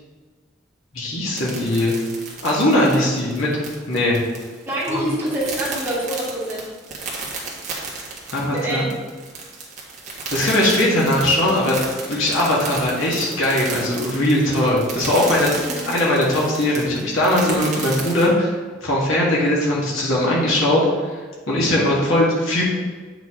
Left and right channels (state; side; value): normal; both; correlation 0.40